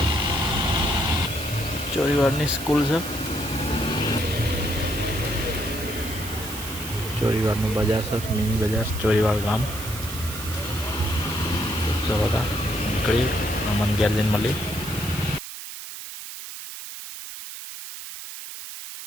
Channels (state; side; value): noise; right; hiss, 10 dB below the sound